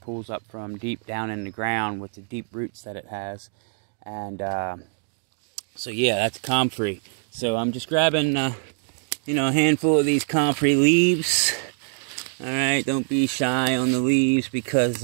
up from deep down in the ground with the deep roots that it has. And so yeah, that's comfrey. So I'm just grabbing a handful of these comfrey leaves. Alright, don't be shy on the leaves because,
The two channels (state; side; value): silent; left; digital silence